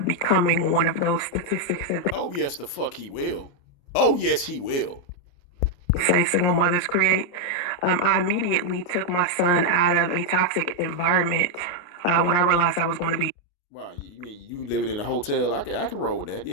becoming one of those statistics that Oh, yes, the fuck he will. Oh, yes, he will. they say single mothers create. I immediately took my son out of a toxic environment when I realized I was going to be Wow, you mean you living in a hotel? I can roll with that.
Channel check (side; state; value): right; late; 29 ms